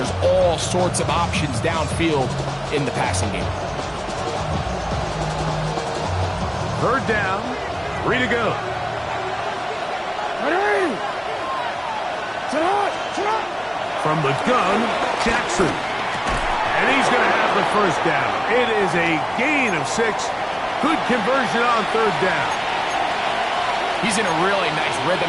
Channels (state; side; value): identical; both; correlation 1.00